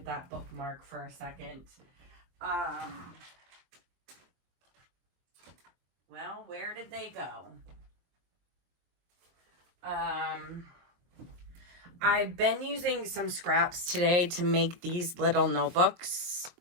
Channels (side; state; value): left; late; 23 ms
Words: that bookmark for a second. Well, where did they go? I've been using some scraps today to make these little notebooks.